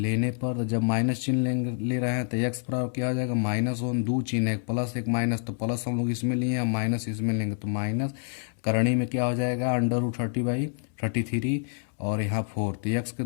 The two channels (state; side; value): silent; right; 60 dB below the other